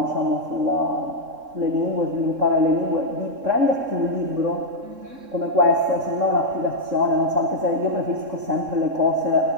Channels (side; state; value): left; late; 3.7 ms